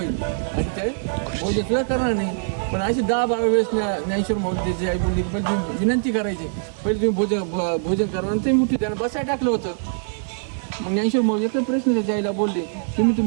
आणि ते भोजन सुद्धा करणार नाही. पण अशी 10-12 वेळेस ज्ञानेश्वर माऊली त्याची आई बोलली की पहिले तुम्ही विनंती करायची, पहिले तुम्ही भोजन करा नंतर मी उठवी, त्यांना बसायला टाकलं होतं. मग ज्ञानेश्वर माऊली एकच प्रश्न त्याच्या आईला बोलले, तुम्ही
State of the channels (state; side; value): silent; left; digital silence